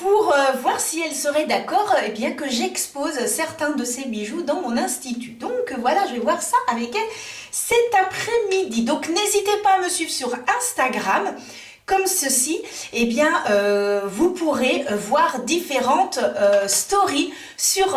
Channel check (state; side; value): identical; both; correlation 1.00